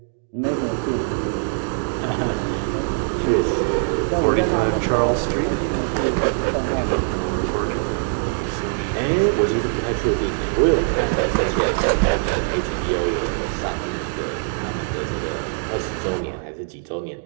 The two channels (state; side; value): silent; left; 64 dB below the other